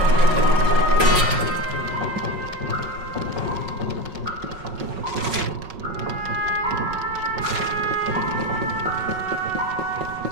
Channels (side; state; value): left; late; 5.4 ms